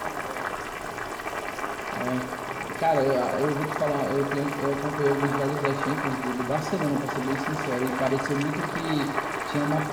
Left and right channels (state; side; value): identical; both; correlation 1.00